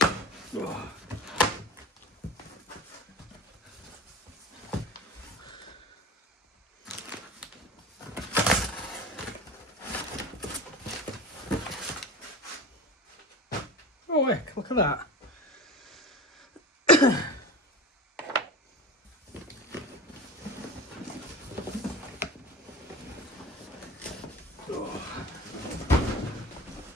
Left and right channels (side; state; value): both; normal; correlation 0.32